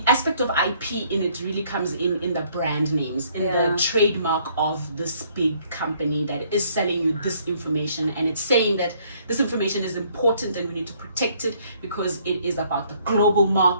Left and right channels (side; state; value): both; inverted; correlation -0.64